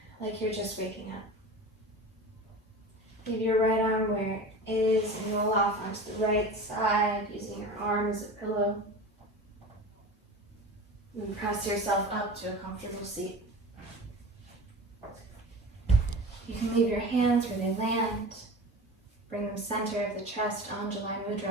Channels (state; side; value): normal; both; correlation 0.34